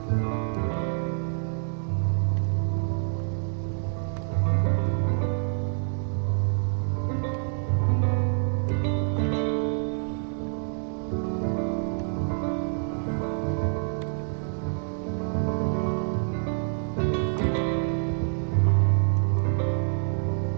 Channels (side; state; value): left; silent; 60 dB below the other